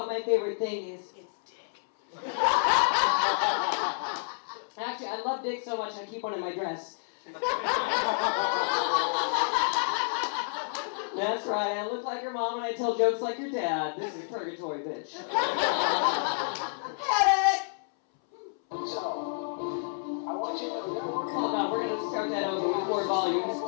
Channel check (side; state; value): right; silent; 58 dB below the other